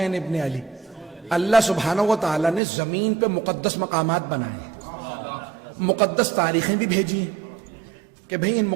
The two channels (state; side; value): drops out; left; at 2.6 s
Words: ابن علی؟ اللہ سبحانہ و تعالیٰ نے زمین پہ مقدس مقامات بنائے ہیں، مقدس تاریخیں بھی بھیجی ہیں کہ بھئی ان